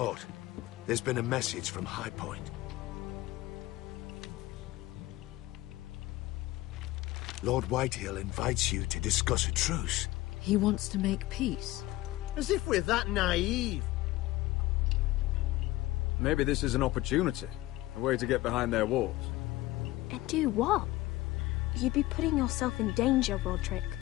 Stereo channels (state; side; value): quieter; right; 17.7 dB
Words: there's been a message from High Point. Lord Whitehill invites you to discuss a truce. He wants to make peace. As if we're that naive. Maybe this is an opportunity. A way to get behind their walls. And do what? You'd be putting yourself in danger, Roderick.